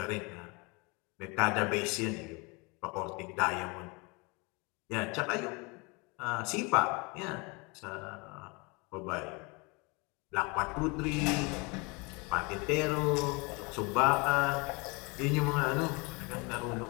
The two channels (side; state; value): right; quieter; 28.6 dB